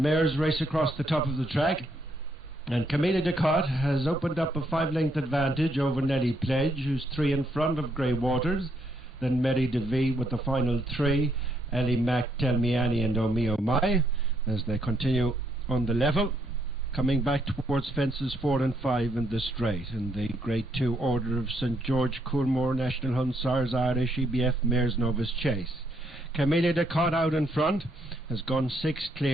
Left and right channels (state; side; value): normal; both; correlation 0.73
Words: mares race across the top of the track, and Camellia de Cotte has opened up a 5-length advantage over Nelly Pledge, who's 3 in front of Grey Waters. Then Mary DeVee with the final 3, Ellie Mack, Tell Me Annie and Oh Me Oh My, as they continue on the level, coming back towards fences 4 and 5 in the straight, in the Grade 2 order of St George, Coolmore, National Hunsars, Irish, EBF Mares, Novice Chase. Camellia de Cotte out in front has gone 6